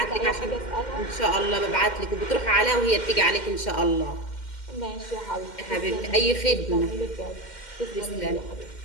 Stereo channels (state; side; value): late; right; 2.1 ms